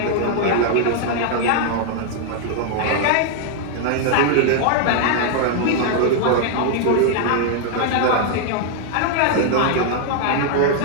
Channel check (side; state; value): both; different; correlation 0.00